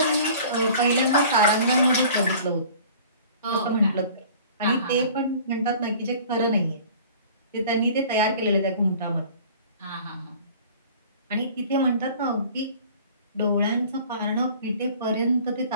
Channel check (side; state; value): both; inverted; correlation -0.47